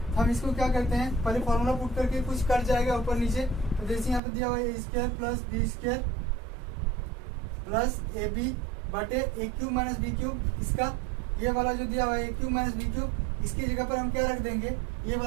हम इसको क्या करते हैं, पहले फॉर्मूला पुट करके कुछ कट जाएगा ऊपर नीचे। तो जैसे यहाँ पे दिया हुआ है ए square plus B square plus A B बटे a cube minus B cube, इसका ये वाला जो दिया हुआ है ए क्यूब माइनस बी क्यूब, इसकी जगह पर हम क्या रख देंगे, ये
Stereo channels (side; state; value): left; drops out; at 4.2 s